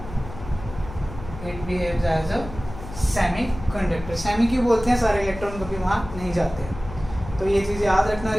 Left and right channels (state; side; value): noise; left; hum, 12 dB below the sound